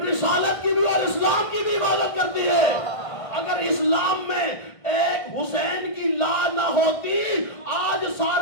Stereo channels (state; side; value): late; right; 1.5 ms